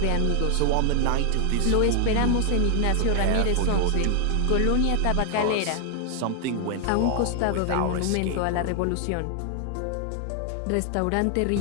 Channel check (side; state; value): both; different; correlation 0.00